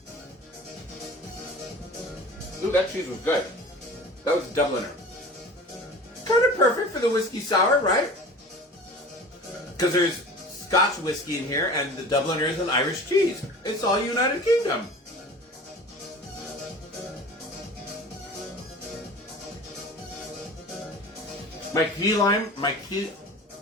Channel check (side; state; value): both; normal; correlation 0.40